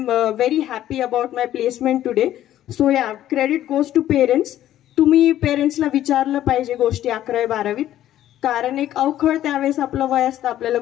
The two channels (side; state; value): right; quieter; 12.6 dB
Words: very happy about my placement today. So yeah, credit goes to parents. तुम्ही पेरेंट्सला विचारलं पाहिजे गोष्टी 11वी-12वीत, कारण एक अवखळ त्यावेळेस आपलं वय असतं, आपल्याला